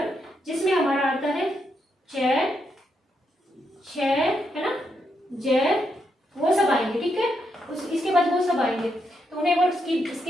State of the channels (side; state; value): both; normal; correlation 0.80